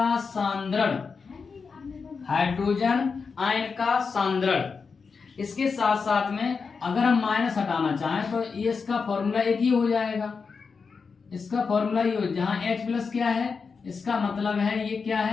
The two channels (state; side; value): quieter; right; 5.2 dB